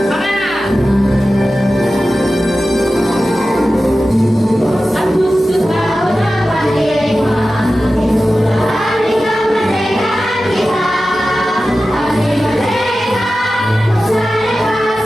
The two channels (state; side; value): normal; both; correlation 0.94